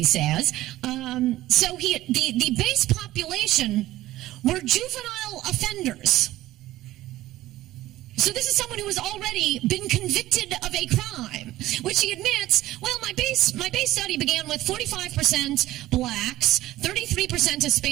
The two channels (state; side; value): quieter; left; 15.8 dB